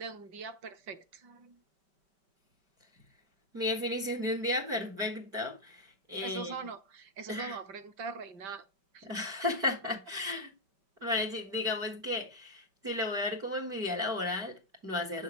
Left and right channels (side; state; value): left; late; 5.2 ms